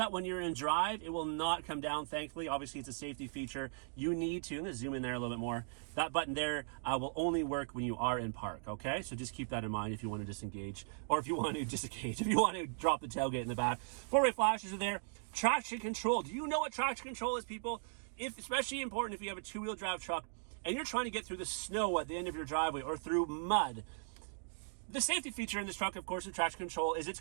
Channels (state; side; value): silent; left; digital silence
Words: when you're in drive, it will not come down, thankfully. Obviously, it's a safety feature. You need to, I'm gonna zoom in there a little bit more. That button there will only work when you are in park, okay? So just keep that in mind if you want to disengage, or if you want to disengage, if you want to drop the tailgate in the back. Four-way flashes are there. Traction control. Do you know what traction control is, people? Especially important if you have a two-wheel drive truck and you're trying to get through the snow at the end of your driveway or through mud. The safety feature in this truck, of course, with traction control is it's